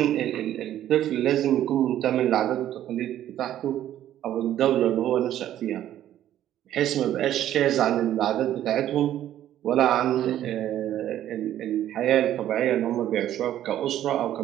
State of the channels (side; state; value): left; quieter; 12.0 dB